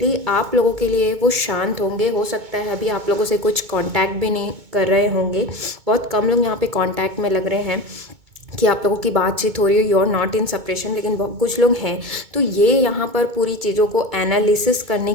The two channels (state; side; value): late; left; 2.2 ms